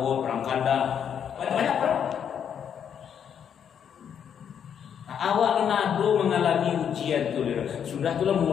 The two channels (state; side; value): quieter; right; 8.3 dB